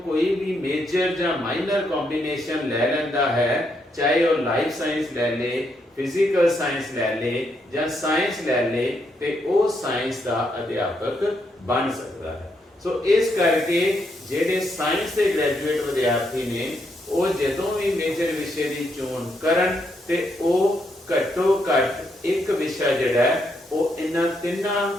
ਕੋਈ ਵੀ ਮੇਜਰ ਜਾਂ ਮਾਈਨਰ ਕੰਬੀਨੇਸ਼ਨ ਲੈ ਲੈਂਦਾ ਹੈ ਚਾਹੇ ਉਹ ਲਾਈਫ ਸਾਇੰਸ ਲੈ ਲੇ ਫਿਜ਼ੀਕਲ ਸਾਇੰਸ ਲੈ ਲੇ ਜਾਂ ਸਾਇੰਸ ਲੈ ਲੇ ਤੇ ਉਹ ਸਾਇੰਸ ਦਾ ਅਧਿਆਪਕ ਬਣ ਸਕਦਾ ਹੈ। ਸੋ ਇਸ ਕਰਕੇ ਜਿਹੜੇ ਸਾਇੰਸ ਦੇ ਗ੍ਰੈਜੂਏਟ ਵਿਦਿਆਰਥੀ ਨੇ ਉਹ ਜਦੋਂ ਵੀ ਮੇਜਰ ਵਿਸ਼ੇ ਦੀ ਚੋਣ ਕਰਨ ਤੇ ਉਹ ਘੱਟੋ ਘੱਟ ਇੱਕ ਵਿਸ਼ਾ ਜਿਹੜਾ ਹੈ ਉਹ ਇਹਨਾਂ ਤਿੰਨਾਂ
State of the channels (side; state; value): both; normal; correlation 0.77